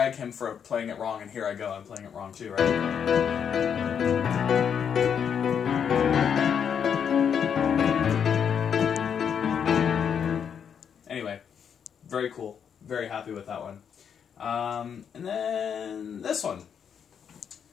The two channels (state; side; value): quieter; right; 7.7 dB